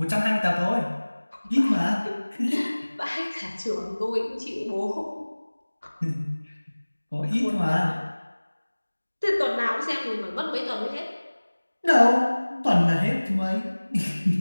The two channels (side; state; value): both; inverted; correlation -1.00